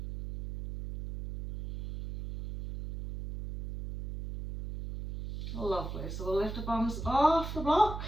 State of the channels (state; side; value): noise; right; hum, 7 dB below the sound